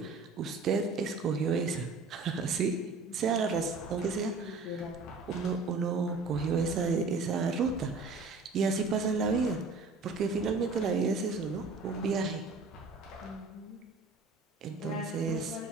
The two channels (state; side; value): quieter; left; 4.0 dB